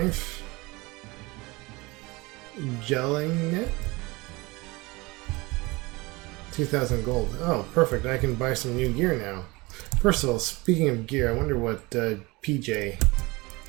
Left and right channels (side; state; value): left; quieter; 23.5 dB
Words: Gelling net. 2,000 gold. Oh, perfect. I can buy some new gear now. First of all, speaking of gear, I wonder what PJ,